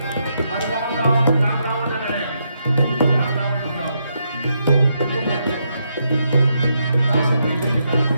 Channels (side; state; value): both; inverted; correlation -0.80